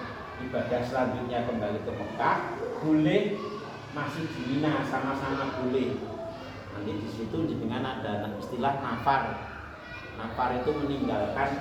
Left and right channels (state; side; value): identical; both; correlation 1.00